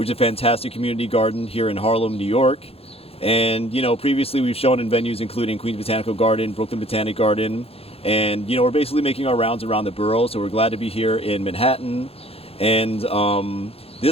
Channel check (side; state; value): right; late; 0.28 ms